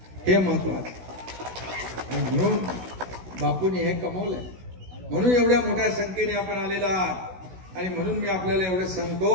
हे महत्वाचं. आणि म्हणून बापूने हे कमवलंय. म्हणून एवढ्या मोठ्या संख्येने आपण आलेला आहात. आणि म्हणून मी आपल्याला एवढं सांगतो,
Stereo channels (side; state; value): left; late; 16 ms